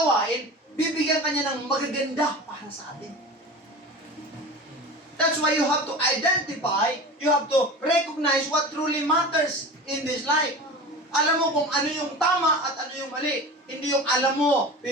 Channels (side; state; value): both; normal; correlation 0.32